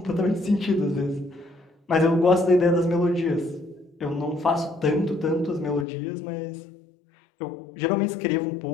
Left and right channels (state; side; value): drops out; right; at 5.9 s